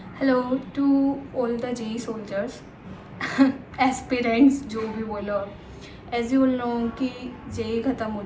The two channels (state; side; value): identical; both; correlation 1.00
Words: Hello to all the JEE soldiers aspirants जो भी बोलो एज यू नो कि जेई ख़त्म हो